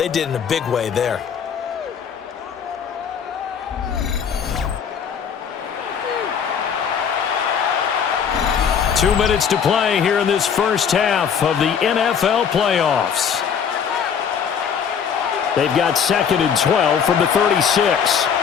did in a big way there. Two minutes to play here in this first half of the NFL playoffs. They've got 2nd and 12 from the 36.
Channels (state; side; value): quieter; right; 7.3 dB